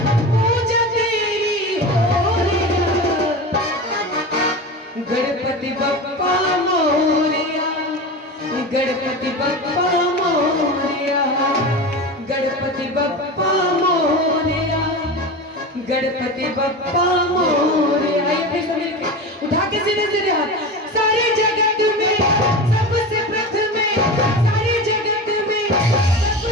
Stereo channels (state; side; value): normal; both; correlation 0.27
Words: पूजा तेरी हो रे, गणपति बप्पा मोरया, गणपति बप्पा मोरया, गणपति बप्पा मोरया, गणपति बप्पा मोरया। उठा के सीधे सीधे हाथ। सारे जगत में सबसे प्रथम, सारे जगत में